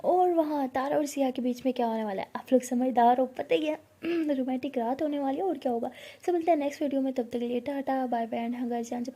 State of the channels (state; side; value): identical; both; correlation 1.00